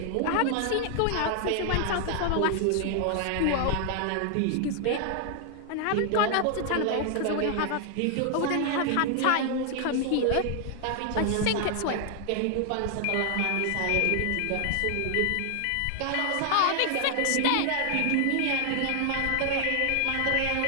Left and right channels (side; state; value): both; different; correlation 0.00